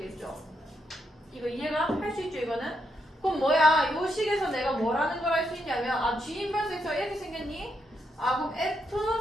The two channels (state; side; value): normal; both; correlation 0.80